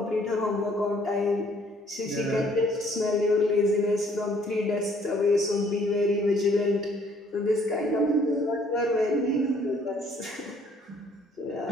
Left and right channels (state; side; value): normal; both; correlation 0.62